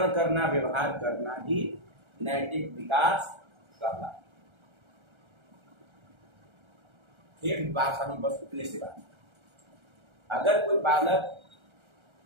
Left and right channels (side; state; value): left; late; 1.3 ms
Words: करना, व्यवहार करना ही नैतिक विकास कहलाता है। फिर बात हम बस उतने से बात, अगर कोई बालक,